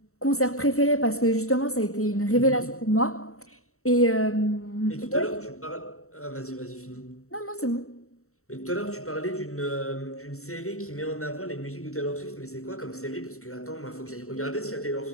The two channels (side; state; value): right; late; 0.64 ms